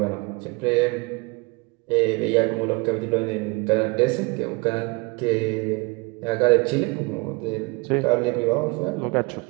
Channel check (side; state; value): left; quieter; 26.4 dB